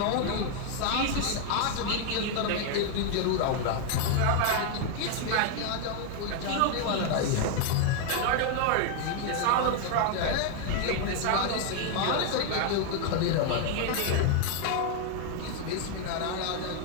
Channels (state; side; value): different; both; correlation 0.01